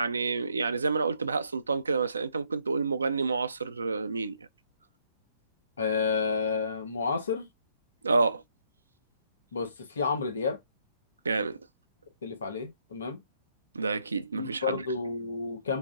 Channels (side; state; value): both; inverted; correlation -0.71